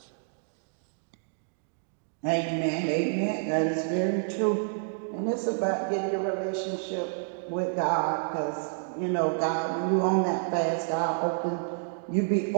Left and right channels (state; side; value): silent; left; digital silence